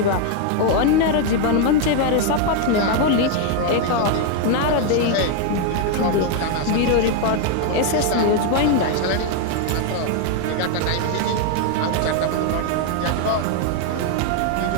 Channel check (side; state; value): both; different; correlation 0.01